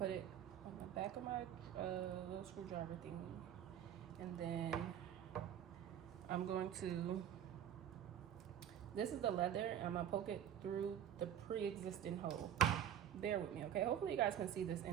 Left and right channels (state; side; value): quieter; left; 10.1 dB